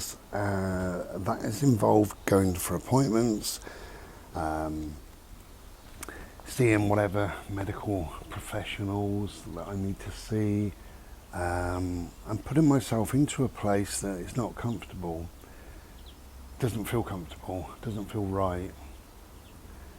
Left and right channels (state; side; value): identical; both; correlation 1.00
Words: that has involved going for appointments, seeing whatever medical professionals that I need to see, and putting myself into a place that is not comfortable, doesn't feel comfortable, doesn't feel right.